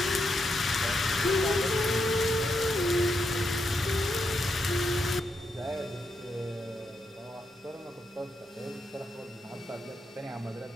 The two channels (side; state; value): both; normal; correlation 0.82